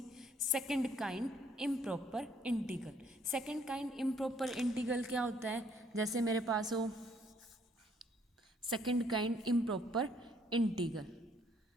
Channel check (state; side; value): normal; both; correlation 0.65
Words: Second kind improper integral. Second kind improper integral क्या होता है? जैसे मेरे पास हो second kind improper integral.